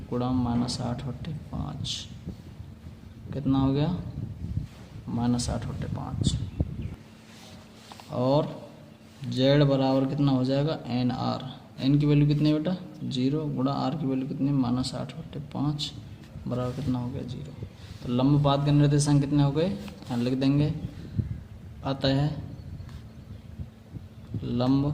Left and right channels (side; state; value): both; identical; correlation 1.00